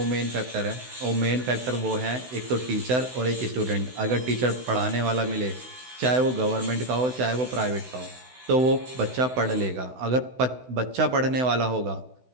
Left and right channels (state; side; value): late; left; 16 ms